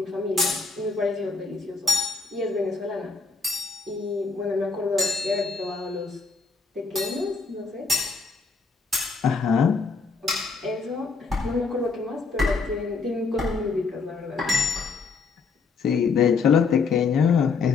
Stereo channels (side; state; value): right; quieter; 4.6 dB